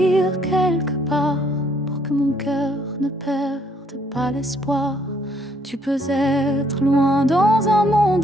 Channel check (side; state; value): both; normal; correlation 0.67